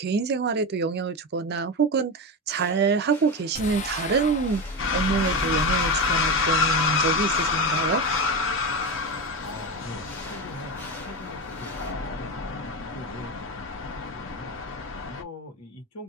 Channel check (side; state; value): both; normal; correlation 0.19